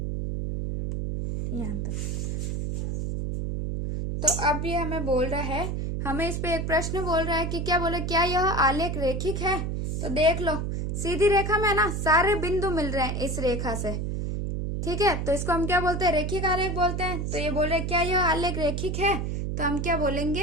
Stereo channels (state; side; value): noise; right; hum, 2 dB below the sound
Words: यहाँ तक। तो अब ये हमें बोल रहा है, हमें इस पे एक प्रश्न बोल रहा है कि क्या बोले, क्या यह आलेख रेखिक है। तो देख लो, सीधी रेखा में ना सारे बिंदु मिल रहे हैं इस रेखा से। ठीक है, तो इसको हम क्या बोलते हैं, रेखिक आलेख बोलते हैं। तो ये बोल रहे क्या यह आलेख रेखिक है, तो हम क्या